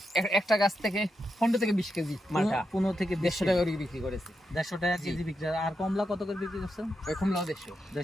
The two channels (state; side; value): normal; both; correlation 0.86